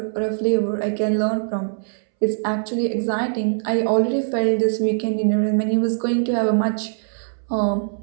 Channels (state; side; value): silent; left; 64 dB below the other